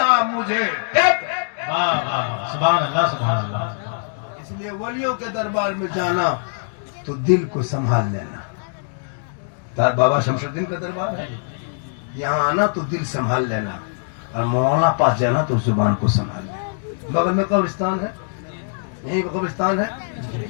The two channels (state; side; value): silent; right; digital silence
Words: मुझे सुभान अल्लाह, सुभान अल्लाह। इसलिए वलियों के दरबार में जाना तो दिल को संभाल लेना। बाबा शमशुद्दीन का दरबार है, यहाँ आना तो दिल संभाल लेना, और मौलाना पास जाना तो जुबान को संभाल लेना। बगल में कब्रिस्तान है, यही कब्रिस्तान है